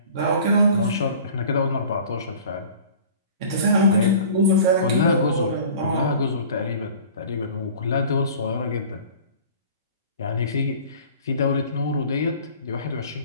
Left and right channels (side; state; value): both; inverted; correlation -0.45